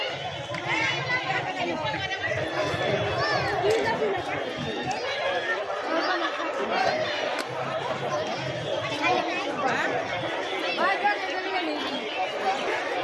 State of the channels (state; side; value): identical; both; correlation 1.00